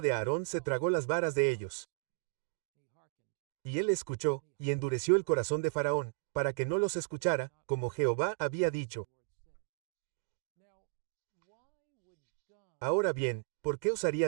de Aarón se tragó las varas de ellos. Y él escuchó, y endureció el corazón de Faraón, para que no los escuchara, como Jehová había dicho. Ahora bien, ¿por qué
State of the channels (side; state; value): left; silent; digital silence